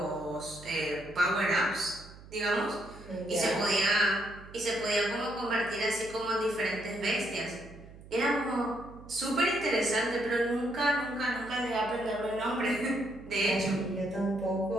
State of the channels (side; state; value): right; noise; hum, 18 dB below the sound